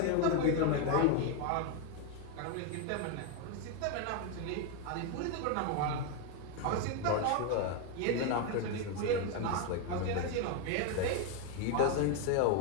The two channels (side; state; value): both; different; correlation 0.01